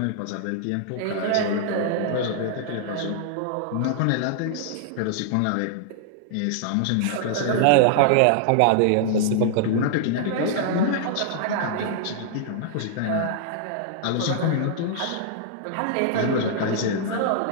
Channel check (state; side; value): different; both; correlation -0.01